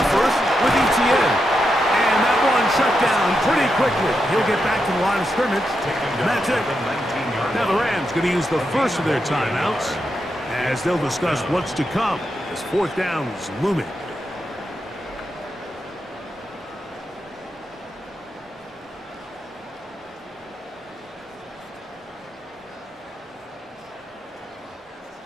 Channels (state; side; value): normal; both; correlation 0.85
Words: first with ETN. And and shut down pretty quickly. He'll get back to the line of scrimmage. And that's it. Now the Rams going to use the first of their timeouts as they'll discuss what's to come as fourth down is looming.